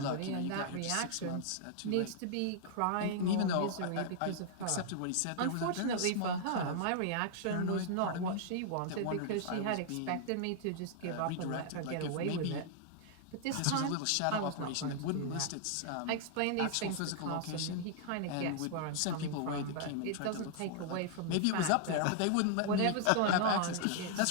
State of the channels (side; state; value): both; different; correlation -0.01